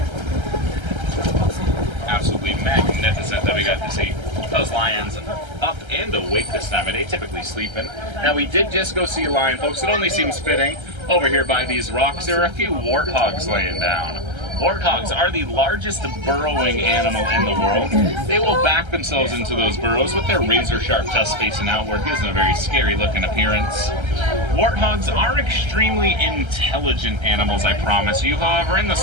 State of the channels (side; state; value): left; late; 1.3 ms